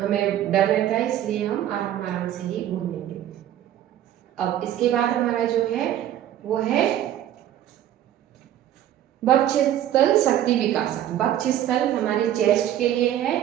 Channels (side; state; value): left; quieter; 11.7 dB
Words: डर रहता है, इसलिए हम आराम आराम से ही घूमेंगे। अब इसके बाद हमारा जो है वो है वक्षस्थल शक्ति विकासक। वक्षस्थल हमारे चेस्ट के लिए है,